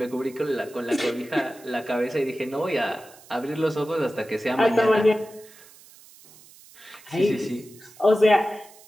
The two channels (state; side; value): noise; right; hiss, 23 dB below the sound